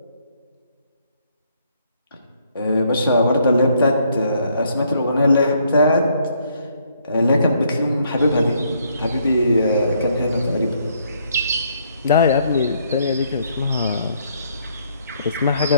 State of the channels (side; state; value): both; inverted; correlation -0.69